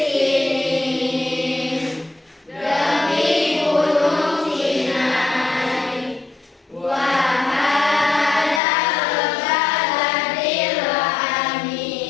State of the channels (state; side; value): drops out; right; at 8.6 s